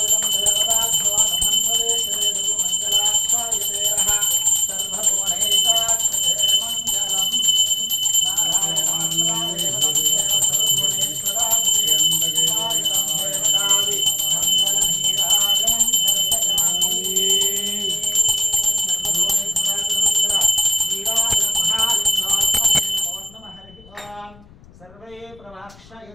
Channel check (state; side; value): noise; left; rumble, 25 dB below the sound